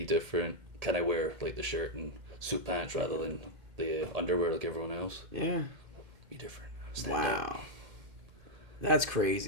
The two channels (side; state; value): left; late; 2.1 ms